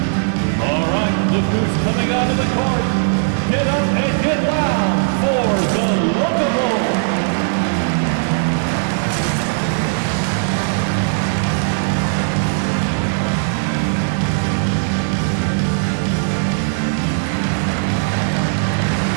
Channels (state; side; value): silent; left; 60 dB below the other